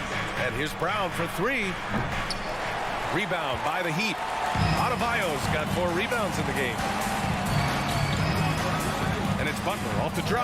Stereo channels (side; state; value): both; identical; correlation 1.00